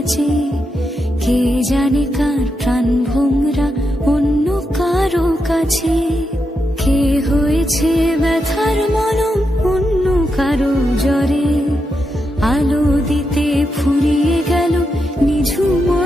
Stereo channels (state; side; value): normal; both; correlation 0.85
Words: কে জানে কার প্রাণ ভোমরা অন্য কারো কাছে। কে হয়েছে ব্যথার মলম অন্য কারো জ্বরে, আলো দিতে ফুরিয়ে গেল নিঝুম